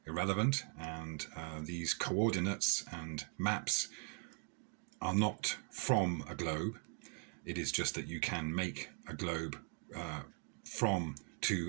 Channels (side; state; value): left; quieter; 38.2 dB